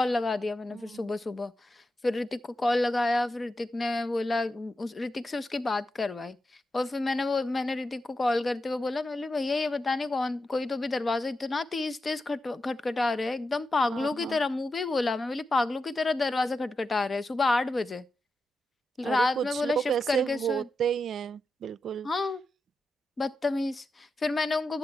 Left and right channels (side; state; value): both; normal; correlation 0.89